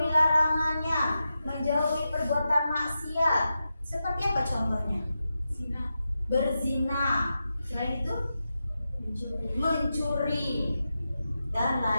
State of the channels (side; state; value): both; inverted; correlation -0.90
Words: larangannya, menjauhi perbuatan maksiat. Seperti apa contohnya? Zina. Berzina. Selain itu mencuri dan